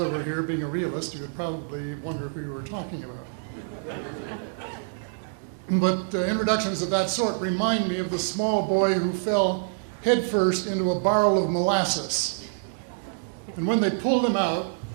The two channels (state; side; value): silent; left; digital silence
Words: were here, being a realist, he would probably wonder who you were talking about. But introductions of that sort remind me of the small boy who fell headfirst into a barrel of molasses. And when they pulled him out,